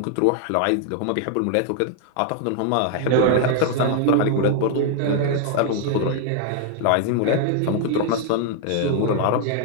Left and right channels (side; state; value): both; different; correlation 0.00